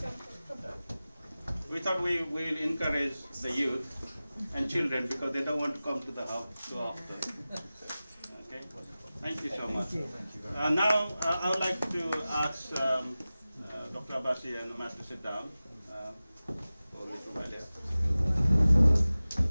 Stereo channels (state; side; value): inverted; both; correlation -0.96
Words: We thought we will encourage the youth and children because they don't want to come to the house too often. Okay, thank you so much. Now I would like to ask Dr. Abasi and Mas to sit down.